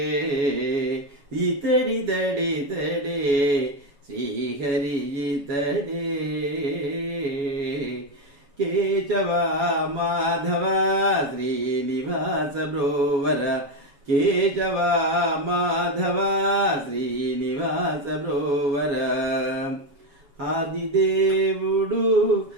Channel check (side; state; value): left; late; 7.2 ms